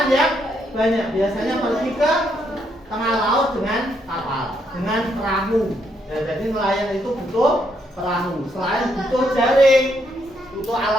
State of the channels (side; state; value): both; normal; correlation 0.75